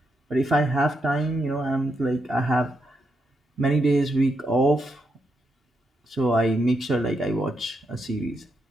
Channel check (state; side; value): normal; both; correlation 0.81